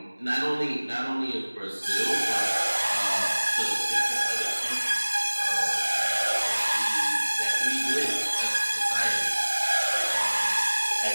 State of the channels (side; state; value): both; inverted; correlation -1.00